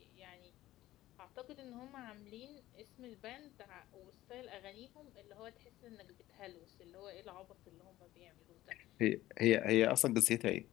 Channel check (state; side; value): quieter; right; 15.6 dB